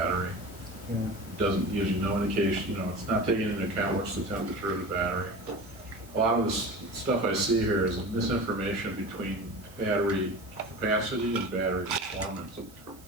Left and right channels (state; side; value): noise; right; hiss, 24 dB below the sound